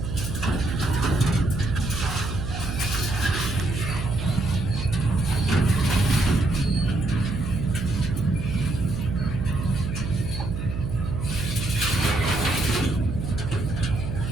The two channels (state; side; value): noise; right; hum, 5 dB below the sound